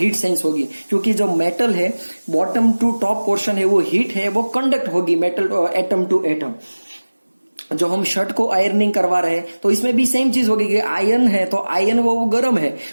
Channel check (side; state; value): both; inverted; correlation -1.00